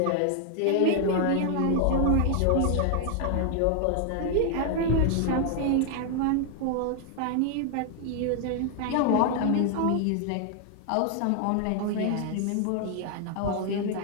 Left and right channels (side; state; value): both; different; correlation 0.00